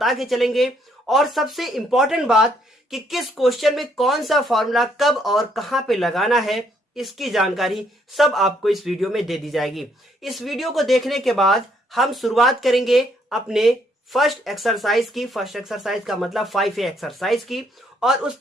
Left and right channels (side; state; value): both; normal; correlation 0.70